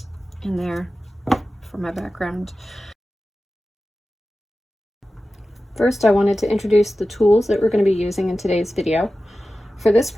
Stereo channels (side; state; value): both; normal; correlation 0.94